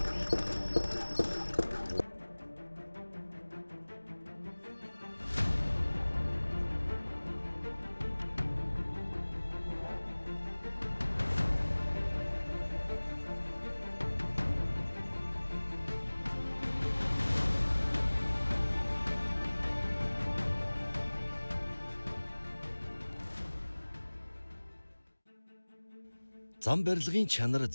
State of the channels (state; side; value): inverted; both; correlation -1.00